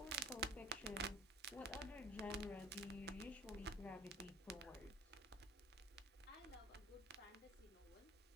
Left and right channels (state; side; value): normal; both; correlation 0.46